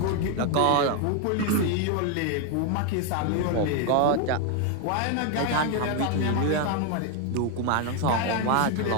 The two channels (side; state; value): both; different; correlation 0.01